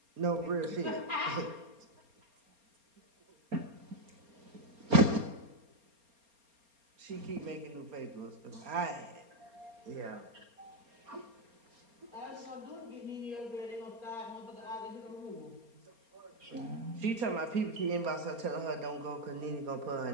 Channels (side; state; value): left; late; 4.3 ms